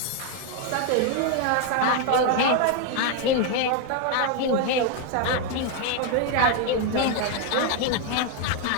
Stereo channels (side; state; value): both; different; correlation 0.01